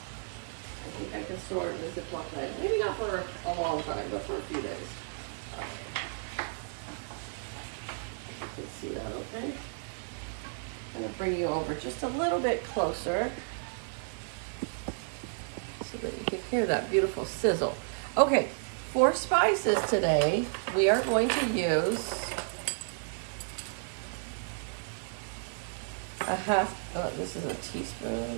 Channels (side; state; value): left; silent; digital silence